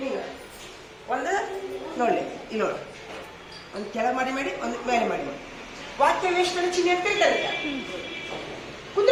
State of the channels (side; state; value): both; identical; correlation 1.00